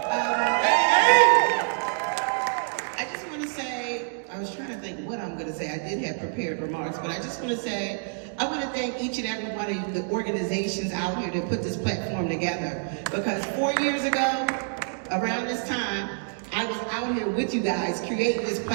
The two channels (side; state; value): left; silent; digital silence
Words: I just want to say, I was trying to think what I'm going to say. I did have prepared remarks, but I just want to say, I want to thank each and every one of the organizations out here that put this platform together. Because 4 years ago, around this time, I was out here with you guys creating this